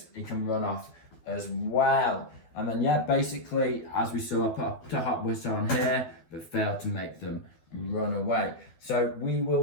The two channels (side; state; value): right; late; 12 ms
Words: he can run off as well. And then, basically, as we saw, I put a hot whistle on here, but failed to make them run away. So we will